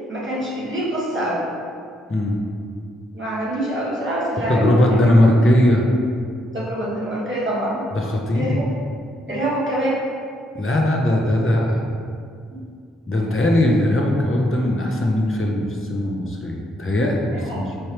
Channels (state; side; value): normal; both; correlation 0.77